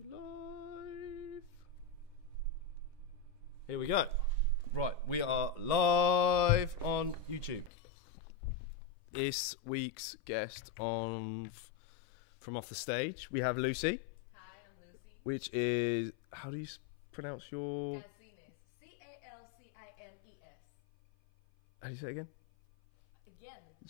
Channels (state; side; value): drops out; right; at 7.7 s